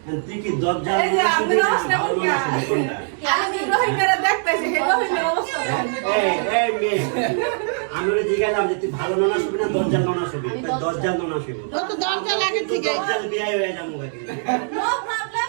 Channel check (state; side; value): silent; left; 59 dB below the other